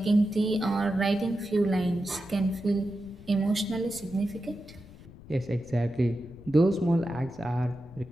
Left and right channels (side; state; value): left; noise; rumble, 19 dB below the sound